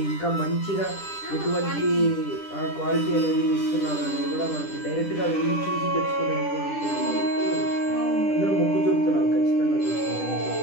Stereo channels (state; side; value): late; right; 10 ms